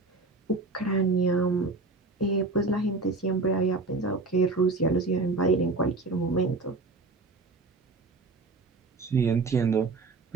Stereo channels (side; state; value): left; quieter; 3.5 dB